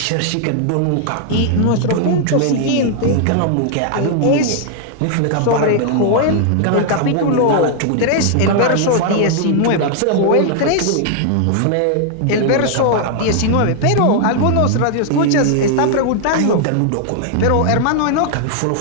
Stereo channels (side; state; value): both; different; correlation 0.00